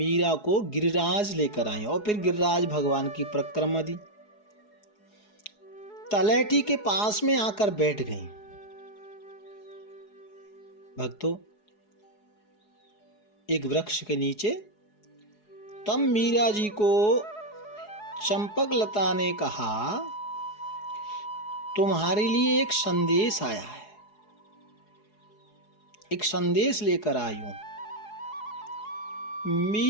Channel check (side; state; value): right; late; 4.8 ms